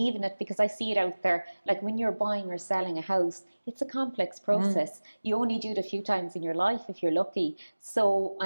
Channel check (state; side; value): inverted; both; correlation -1.00